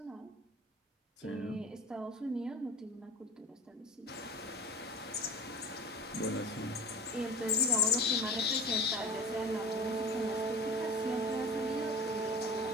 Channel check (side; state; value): both; normal; correlation 0.35